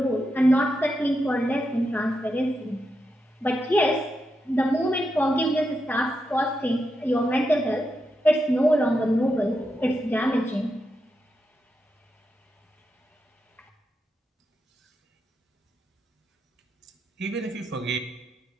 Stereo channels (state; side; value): normal; both; correlation 0.85